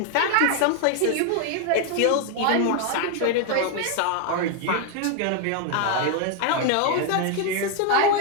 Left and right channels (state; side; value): different; both; correlation 0.00